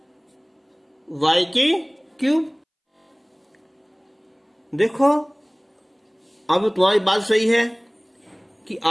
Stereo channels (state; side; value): identical; both; correlation 1.00